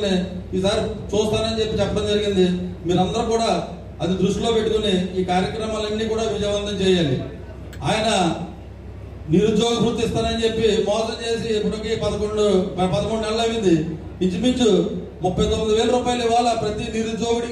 ఈసారి చూస్తానని చెప్పి చెప్పడం జరిగింది. మీరందరూ కూడా అది దృష్టిలో పెట్టుకుని ఈ కార్యక్రమాలన్నీ కూడా విజయవంతం చేయాలి. ఆయన నిరుద్యోగ వృత్తి ఇస్తానని చెప్పి మోసం చేసి ఇప్పటికి 11 నెలలు అయింది. ఇంచుమించు 39,000 రూపాయలు ఇవాళ ప్రతి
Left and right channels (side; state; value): both; identical; correlation 1.00